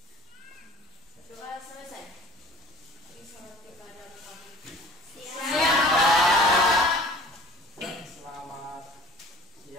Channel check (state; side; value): normal; both; correlation 0.48